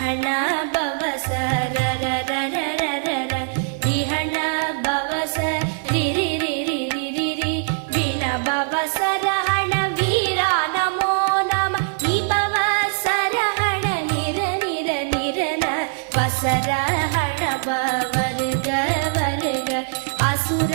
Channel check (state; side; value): silent; left; 63 dB below the other